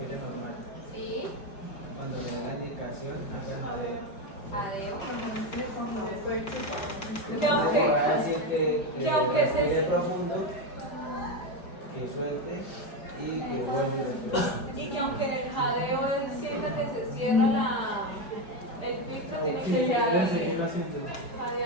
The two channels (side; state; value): right; late; 5.1 ms